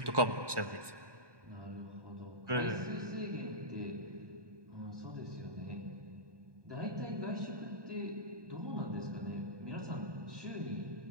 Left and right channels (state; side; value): late; left; 1.2 ms